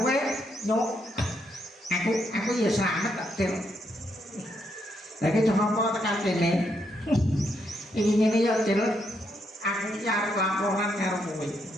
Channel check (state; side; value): normal; both; correlation 0.77